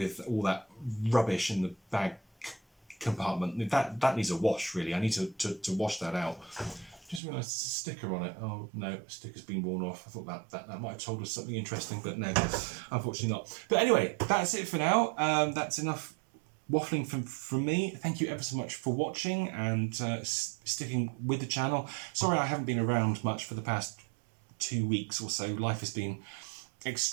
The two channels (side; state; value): left; drops out; at 7.2 s